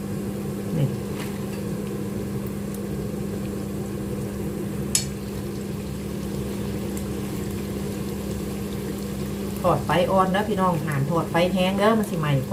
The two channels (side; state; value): both; identical; correlation 1.00